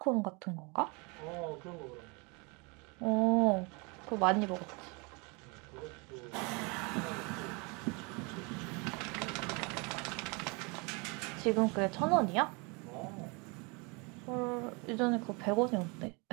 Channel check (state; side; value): quieter; left; 30.1 dB